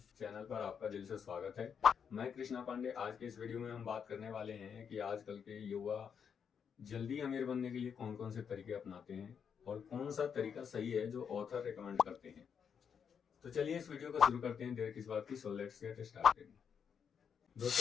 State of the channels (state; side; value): quieter; right; 7.1 dB